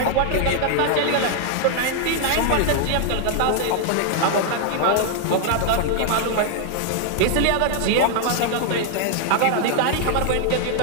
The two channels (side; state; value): both; different; correlation 0.00